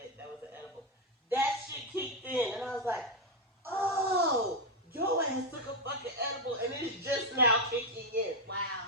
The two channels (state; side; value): normal; both; correlation 0.05